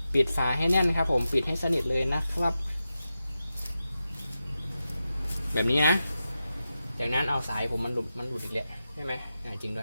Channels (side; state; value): both; inverted; correlation -0.91